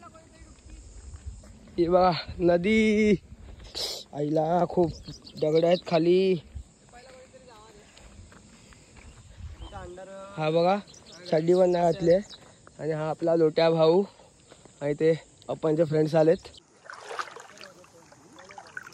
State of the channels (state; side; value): identical; both; correlation 1.00